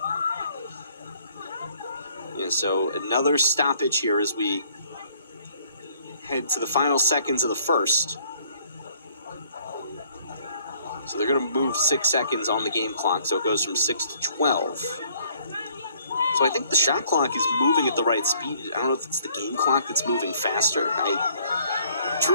Yeah, so another stoppage here as we head to the final seconds of the first. So they're going to move 6 seconds on the game clock, so it goes from 6 to 12. So I think the shot clock is moving at the right speed. I don't know if it's the game clock that's moving faster. I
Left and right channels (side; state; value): both; inverted; correlation -0.61